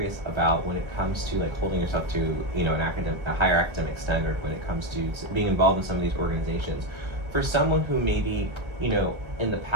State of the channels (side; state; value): left; late; 1.4 ms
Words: about when it comes to like holding yourself to, you know, a higher academic standard when it comes to being involved in some of these organizations. For someone who maybe, you know, in the